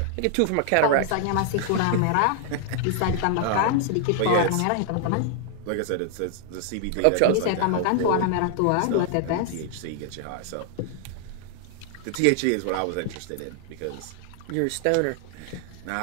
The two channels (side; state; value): both; different; correlation 0.00